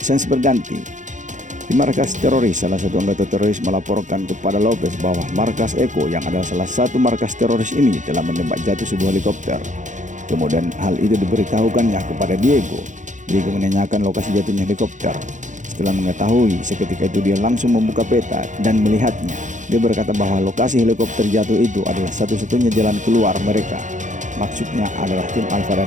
Sensi berganti. Di markas teroris, salah satu anggota teroris melaporkan kepada Lopez bahwa markas Eko yang adalah salah satu markas teroris ini telah menembak jatuh sebuah helikopter. Kemudian hal itu diberitahukannya kepada Diego. Diego menanyakan lokasi jatuhnya helikopter. Setelah mengetahui, seketika itu dia langsung membuka peta dan melihatnya. Dia berkata bahwa lokasi helikopter jatuh itu adalah satu-satunya jalan keluar mereka. Maksudnya adalah tim Alpha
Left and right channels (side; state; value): left; late; 0.36 ms